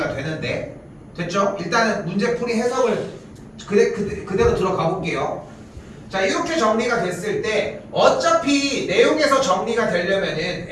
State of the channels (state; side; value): identical; both; correlation 1.00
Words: 되는데 됐죠? 일단은 문제풀이 해석을 그대로 들어가 볼게요. 자 이렇게 정리가 됐을 때 어차피 내용에서 정리가 되려면은